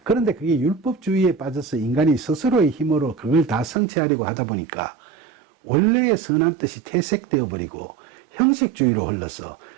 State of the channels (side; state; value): left; drops out; at 3.8 s